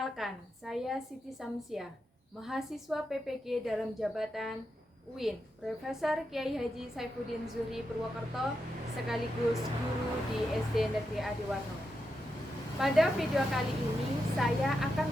saya Siti Samsiah, mahasiswa PPG dalam jabatan UIN Profesor Kiai Haji Saifuddin Zuhri Purwokerto sekaligus guru di SD Negeri Adiwarno. Pada video kali ini saya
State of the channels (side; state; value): both; normal; correlation 0.86